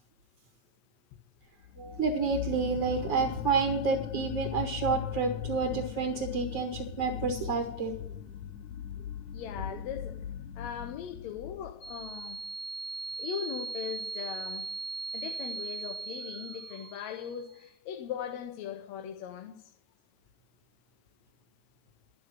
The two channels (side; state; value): right; late; 9.3 ms